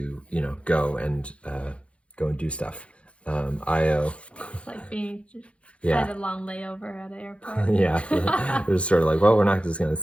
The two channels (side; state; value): right; late; 0.061 ms